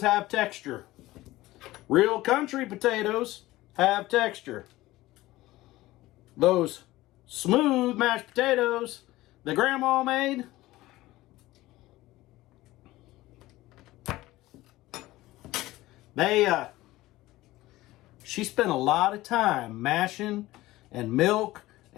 have texture. Real country potatoes have texture. Those smooth mashed potatoes that Grandma made, she spent a lot of time mashing and milk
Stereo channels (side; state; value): right; quieter; 17.6 dB